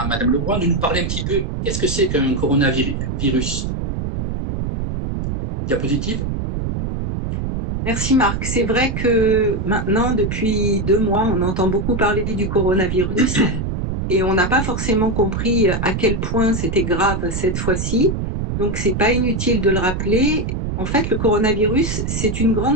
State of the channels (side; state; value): right; noise; rumble, 3 dB below the sound